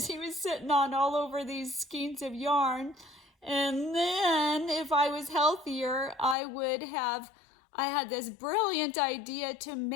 he was sitting on all over these skeins of yarn. And then if I was healthier, I had this brilliant idea to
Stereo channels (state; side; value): drops out; right; at 6.4 s